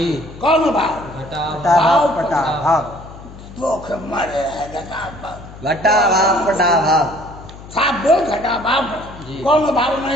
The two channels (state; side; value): noise; left; hum, 16 dB below the sound